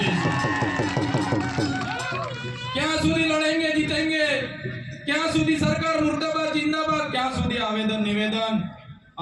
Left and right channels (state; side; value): identical; both; correlation 1.00